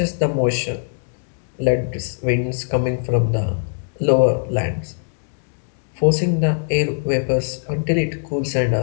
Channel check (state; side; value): silent; right; digital silence